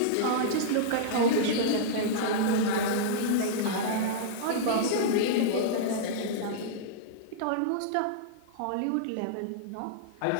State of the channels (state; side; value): different; both; correlation -0.02